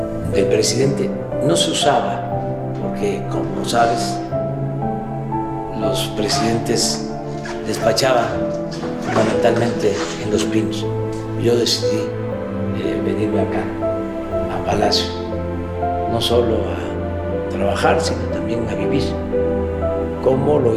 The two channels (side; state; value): both; identical; correlation 1.00